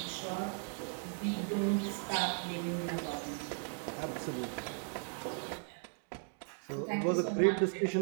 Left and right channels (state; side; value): silent; left; 53 dB below the other